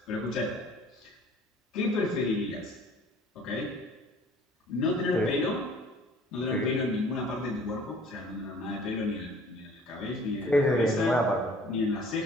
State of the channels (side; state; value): both; normal; correlation 0.52